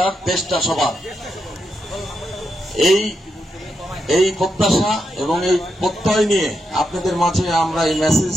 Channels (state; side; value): normal; both; correlation 0.84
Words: দেশটা সবার, এই প্রত্যাশা এবং এই প্রত্যয় নিয়ে আপনাদের মাঝে আমরা এই মেসেজ